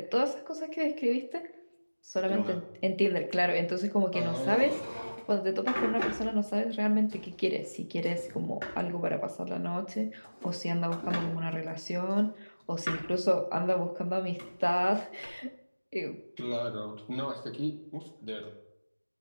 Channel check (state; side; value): inverted; both; correlation -1.00